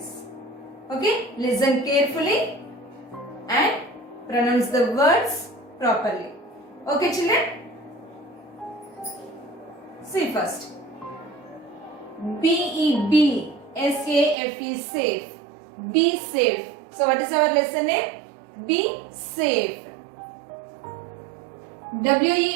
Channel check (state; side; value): drops out; left; at 14.4 s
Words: Okay? Listen carefully and pronounce the words properly. Okay children? See first. B-E-B. S-A-F-E, safe. Be safe. So what is our lesson name? Be safe.